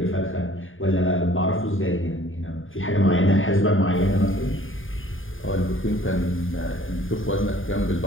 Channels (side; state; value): right; late; 0.58 ms